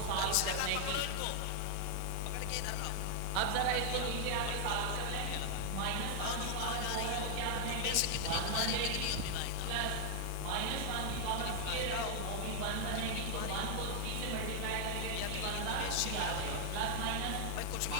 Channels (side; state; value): both; different; correlation 0.00